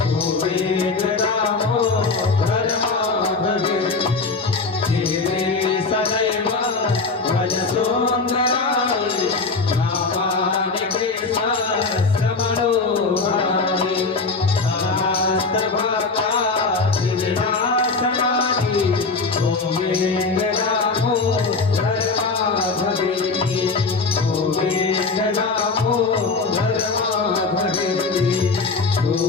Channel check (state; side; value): quieter; right; 4.1 dB